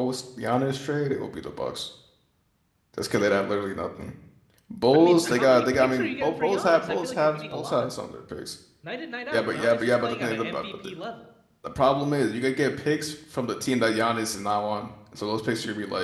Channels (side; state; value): both; identical; correlation 1.00